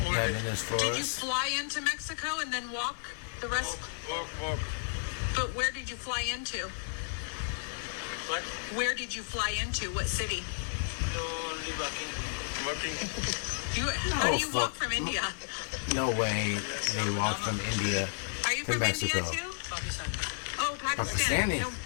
yeah, in his Did you forest. fly into Mexico and then walk the rest? Walk. But where did you fly into? What? Where did you fly into? What city? No, only walking. How do you walk from India? No way. They walk from India. Are you To from India Mexico. too? Pakistan. Oh, Pakistan. Pakistani. No,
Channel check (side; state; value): right; silent; 56 dB below the other